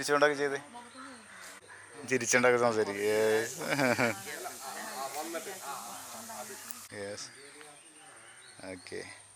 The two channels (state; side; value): identical; both; correlation 1.00